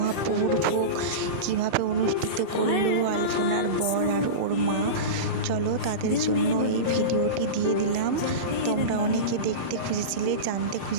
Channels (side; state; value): left; late; 5.2 ms